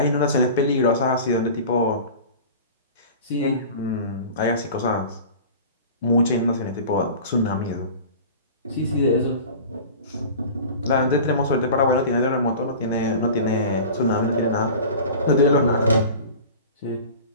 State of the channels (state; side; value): inverted; both; correlation -0.38